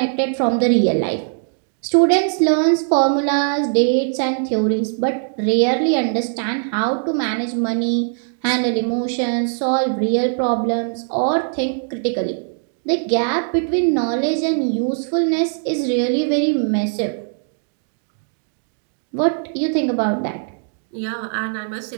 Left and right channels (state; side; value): silent; left; digital silence